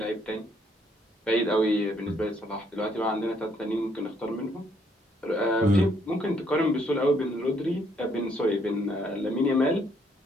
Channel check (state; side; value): normal; both; correlation 0.69